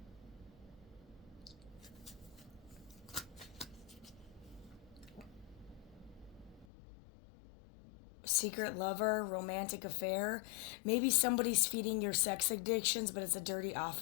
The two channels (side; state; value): right; drops out; at 6.7 s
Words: Secret lover, romantic affair. Maybe somebody's feeding your sex addictions, but it's a dirty